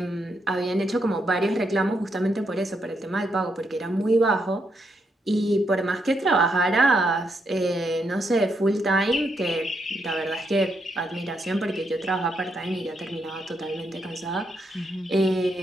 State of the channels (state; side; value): normal; both; correlation 0.79